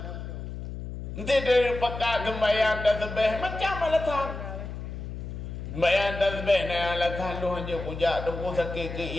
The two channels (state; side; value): noise; left; hum, 8 dB below the sound